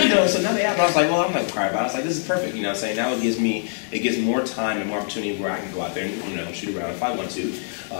you know, so now they have. I was like, well, I'm not gonna cry about it. I was like, this is perfect. You know, what I'm saying now it gives more time and more opportunity where I can go out there and, you know, shoot around if I want to,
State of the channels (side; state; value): right; silent; digital silence